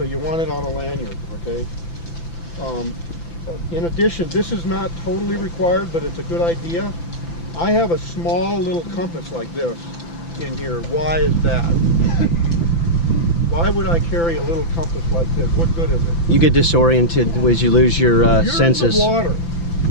you want it on a lanyard, okay? In addition, this is not totally required, but it's a good idea. I have a small little compass like this in here. Why is that? Why would I carry a little compass like this? What good is it? You get disoriented as you lose your You're senses. in the water.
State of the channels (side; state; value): right; late; 5.9 ms